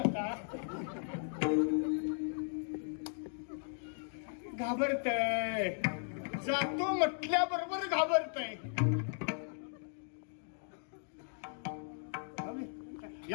घाबरतय. जातो म्हटल्याबरोबर घाबरतय.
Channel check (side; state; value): right; silent; digital silence